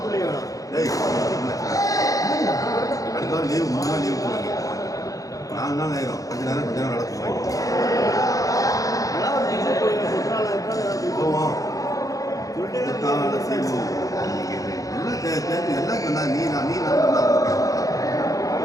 ஏய் அடுத்த வாரம் லீவு 3 நாள் லீவு போடுங்க 4 நாள் ஆயிரும் கொஞ்ச நேரம் நடக்கும் போவோம் எல்லாம் சொன்னா நீ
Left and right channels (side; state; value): right; late; 0.17 ms